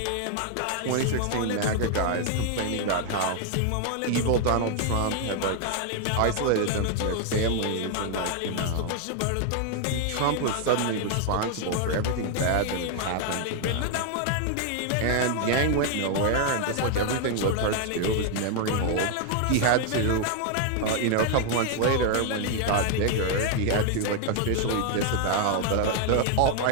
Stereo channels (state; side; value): different; both; correlation 0.00